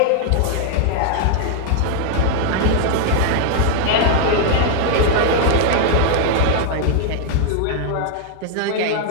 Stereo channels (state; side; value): different; both; correlation 0.00